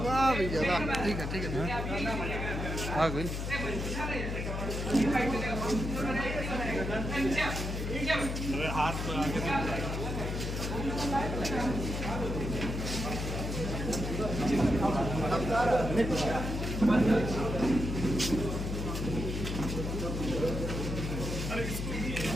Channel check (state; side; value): noise; left; hum, 3 dB below the sound